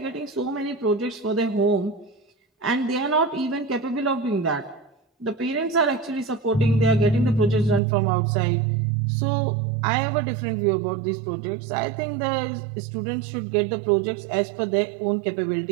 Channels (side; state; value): left; drops out; at 7.8 s